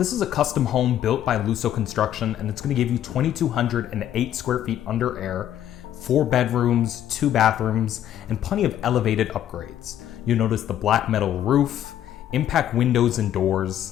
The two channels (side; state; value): right; quieter; 11.1 dB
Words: is a custom home built by Luso Construction, and it's going to give you 2,208 square feet under air, 4 bedrooms, 2 bathrooms, and plenty of elevated upgrades. You'll notice the black metal roof, impact windows and